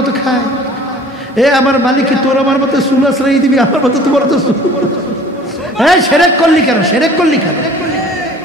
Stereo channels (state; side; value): normal; both; correlation 0.48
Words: খায়? আমার মালিক কি তোর আমার মতো চুল আশ্রয় দিবি? আমার মতো তোমার তো সেরেক করলি কেন? সেরেক করলি কেন?